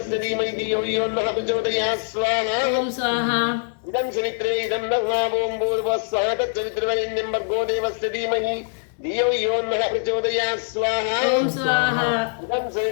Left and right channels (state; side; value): silent; right; digital silence